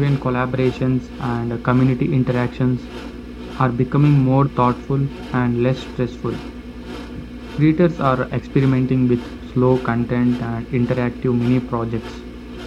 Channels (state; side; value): identical; both; correlation 1.00